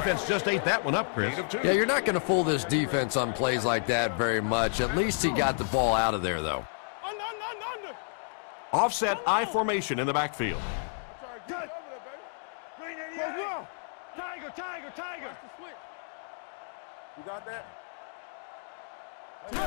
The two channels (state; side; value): silent; right; digital silence